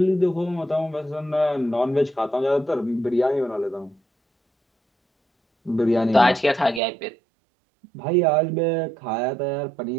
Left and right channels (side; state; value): left; drops out; at 6.8 s